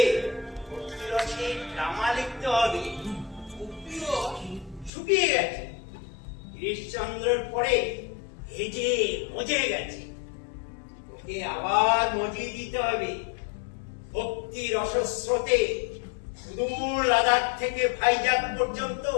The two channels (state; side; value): drops out; right; at 4.9 s